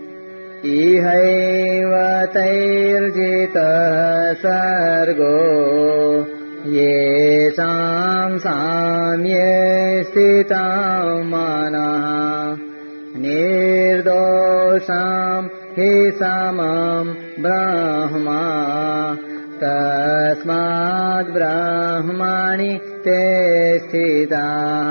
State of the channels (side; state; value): both; inverted; correlation -1.00